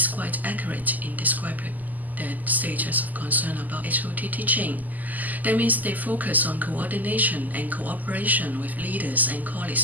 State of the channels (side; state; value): left; late; 0.082 ms